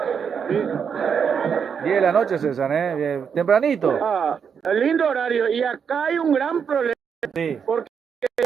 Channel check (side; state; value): left; quieter; 6.9 dB